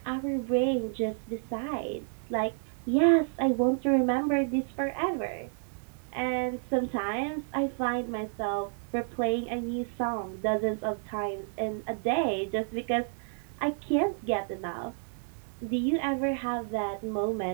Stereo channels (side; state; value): left; silent; 58 dB below the other